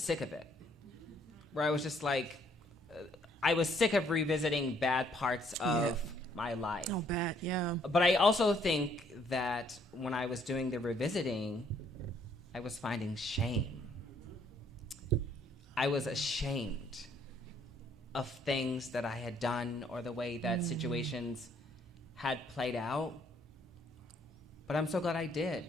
of it, where I was just like, I was sick of revisiting bad parts of my life. Oh, bad, yeah. But I also think that when I was doing the revisiting, I was finding shame. I was ashamed of things that I had done or the way that situations had played out. But I'm so glad I did,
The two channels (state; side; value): normal; both; correlation 0.66